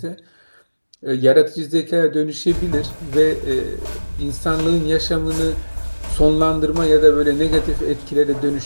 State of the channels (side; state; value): both; inverted; correlation -1.00